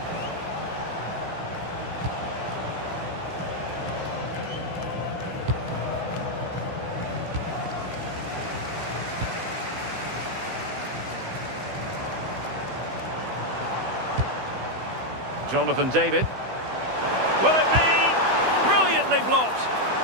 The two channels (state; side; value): late; left; 16 ms